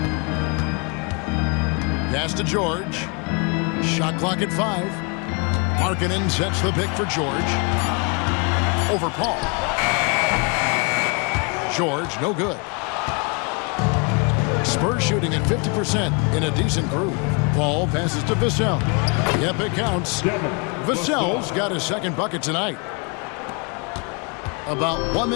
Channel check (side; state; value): right; quieter; 33.2 dB